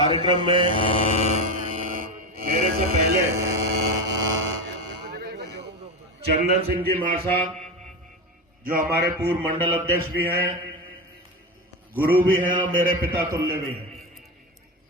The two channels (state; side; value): normal; both; correlation 0.18